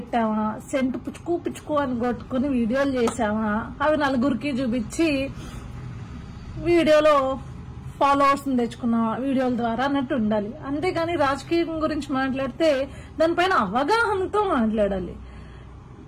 సెంటు పుచ్చుకు పుచ్చుకు అని కొట్టుకుని వీడియోలు చేసామా, అవి నలుగురికి చూపించి వీడియోలో ఫాలోవర్స్ తెచ్చుకున్నామా వీడియోల ద్వారా అన్నట్టు ఉండాలి. అంతేగాని రాజకీయం గురించి మాట్లాడితే దానిపైన అవగాహనతో మాట్లాడాలి.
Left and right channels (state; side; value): identical; both; correlation 1.00